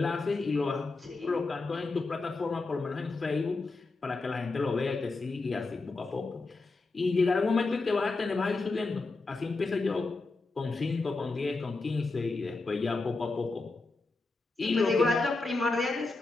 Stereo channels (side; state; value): right; quieter; 3.6 dB